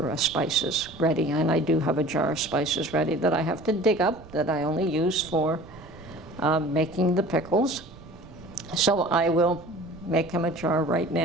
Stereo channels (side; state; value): right; noise; rumble, 19 dB below the sound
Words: spices ready, and I do have a jar of spices ready that I have to dig up that I only use for making the pickles. So I will make him a jar right